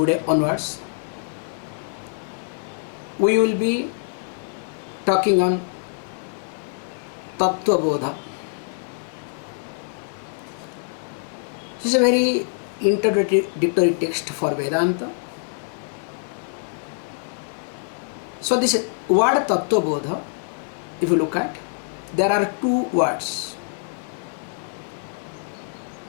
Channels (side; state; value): right; silent; 62 dB below the other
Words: onwards, we will be talking on Tattva Bodha. This is a very introductory text for Vedanta. So this word Tattva Bodha, if you look at, there are two words.